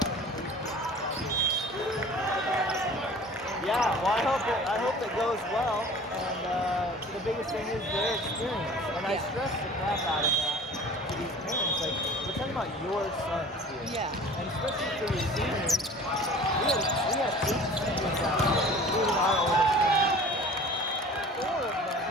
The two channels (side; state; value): both; normal; correlation 0.44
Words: Yeah, well, I hope it goes well, and the biggest thing is their experience, and I stress the crap out of that to these parents. Like, we're talking about your sons here, Yeah. and especially for your seniors. We have 8 seniors out here, including our oldest son. 4 of them